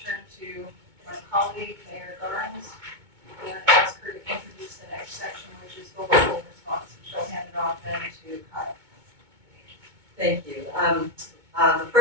turn to my colleague, Mayor Garnes, and ask her to introduce the next section, which is the local response. She'll hand it off then to Kyle. Thank you. The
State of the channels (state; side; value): late; left; 2.2 ms